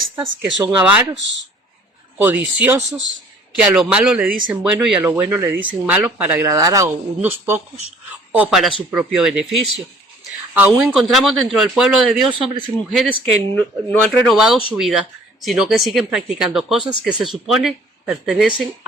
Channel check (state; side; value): normal; both; correlation 0.54